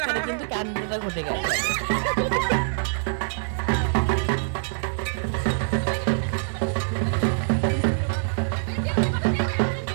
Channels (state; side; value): silent; left; digital silence